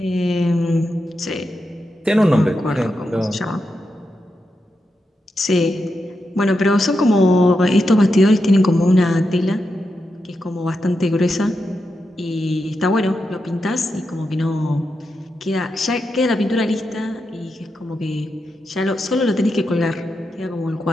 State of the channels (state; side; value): normal; both; correlation 0.87